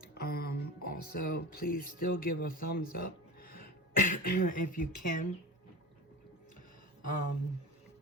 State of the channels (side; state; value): both; normal; correlation 0.32